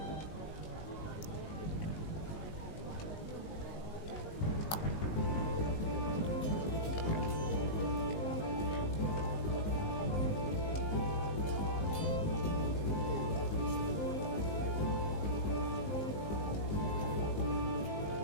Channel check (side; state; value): right; late; 19 ms